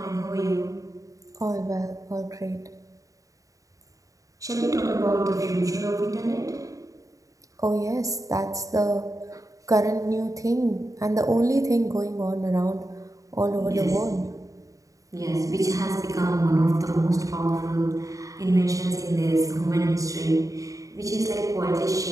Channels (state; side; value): late; left; 0.16 ms